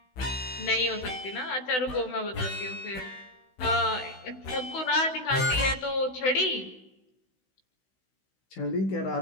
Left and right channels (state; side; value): late; right; 16 ms